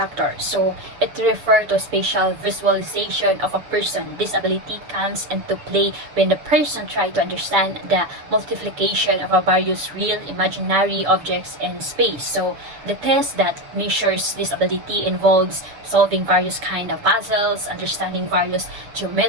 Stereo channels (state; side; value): late; left; 6.9 ms